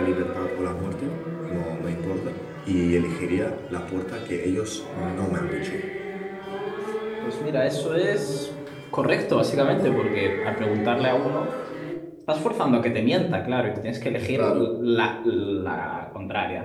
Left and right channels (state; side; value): identical; both; correlation 1.00